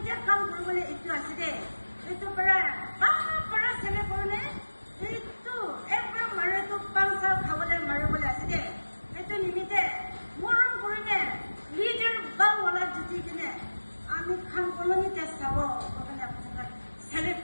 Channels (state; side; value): inverted; both; correlation -1.00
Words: কাম কৰিবলৈ এইটো আছে দে এইটো পৰা চেলে কৰিলে এইটো একবাৰ মাৰেতো 5 সাল খাবলৈ মাৰিবলৈ আছে দে এইটো নিমিত্তে মৰম কৰিলে লিডাৰ বাংলা জিতি কিনে আমি খান কলনীতে চাব কাৰণে আপোনাক চেলেক্ট